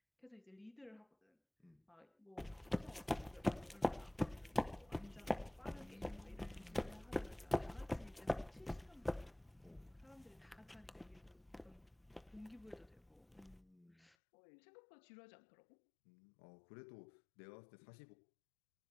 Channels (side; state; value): right; drops out; at 14.1 s